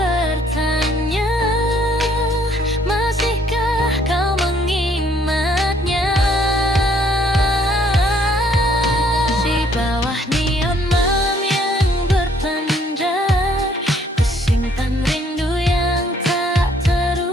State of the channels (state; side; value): normal; both; correlation 0.64